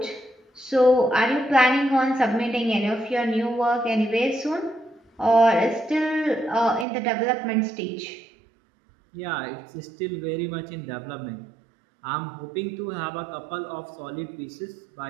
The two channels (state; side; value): drops out; left; at 6.9 s